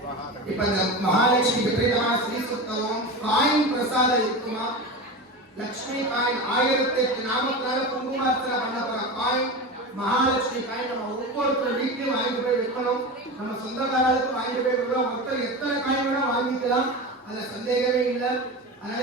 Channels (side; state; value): both; normal; correlation 0.25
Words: இப்ப இந்த மகாலட்சுமி விபரீதமான ஸ்ரீ சுத்தம் காயின் பிரசாதம் இருக்குமா? லட்சுமி காயின் 1008 நாமத்தினால குங்குமார்த்தனை பண்ண போற காயின் மகாலட்சுமி காயின் நம்ம ஒவ்வொருத்தர் வீட்லயும் வாங்கிட்டு போய் வைக்கணும். நம்ம சொந்தக்காரர்களுக்கு வாங்கிட்டு போய் வைக்கலாம். ஒருத்தர் எத்தனை காயின் வேணா வாங்கிக்கலாம். அதுல சந்தேகமே இல்லை. அதனால